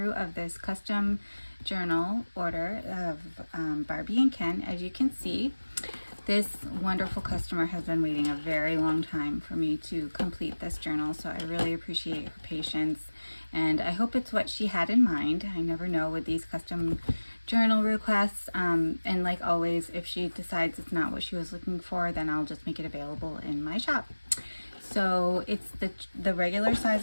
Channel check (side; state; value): both; inverted; correlation -1.00